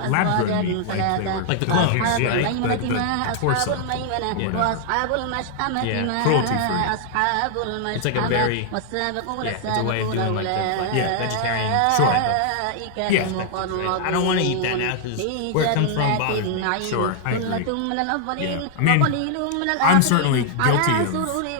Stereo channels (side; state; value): both; different; correlation 0.00